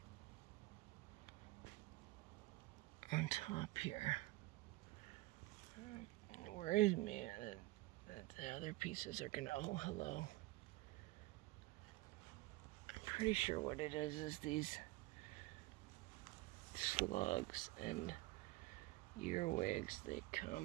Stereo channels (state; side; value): quieter; left; 19.3 dB